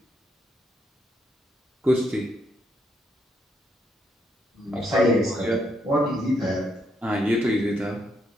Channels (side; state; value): both; normal; correlation 0.75